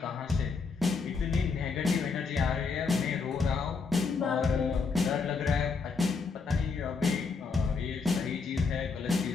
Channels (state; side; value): quieter; right; 4.9 dB